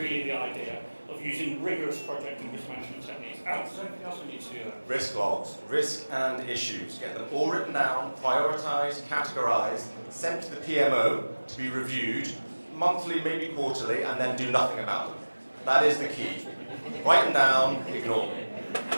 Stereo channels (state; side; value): inverted; both; correlation -1.00